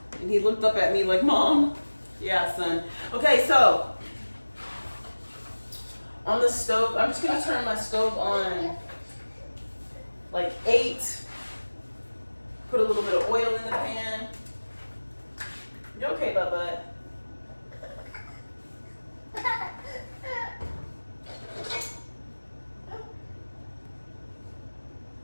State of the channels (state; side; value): inverted; both; correlation -1.00